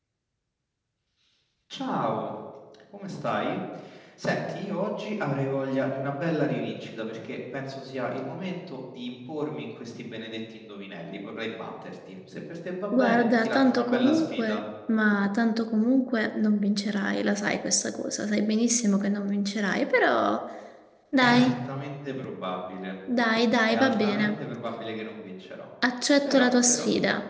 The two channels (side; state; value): both; identical; correlation 1.00